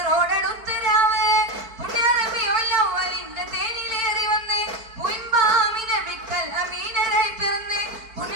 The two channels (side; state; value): left; late; 4.5 ms